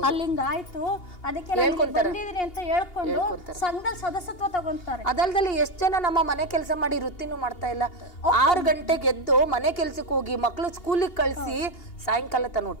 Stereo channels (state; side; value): late; right; 2.8 ms